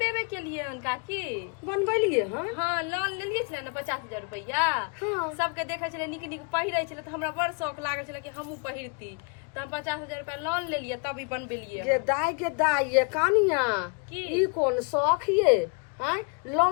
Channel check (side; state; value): right; quieter; 35.4 dB